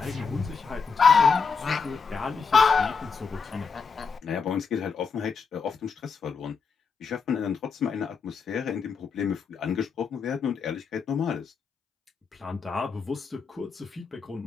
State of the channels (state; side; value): quieter; right; 5.4 dB